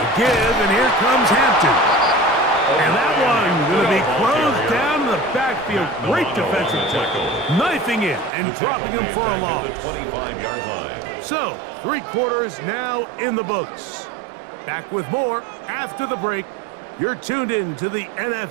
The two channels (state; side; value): drops out; left; at 8.3 s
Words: The give, and here comes Hampton. And that one going to be closed down in the backfield. Great defensive tackle. Knifing it and dropping him for a loss. The 25-yard line. So, 3 quarters now in the books. Back with more after the break. You're tuned in to the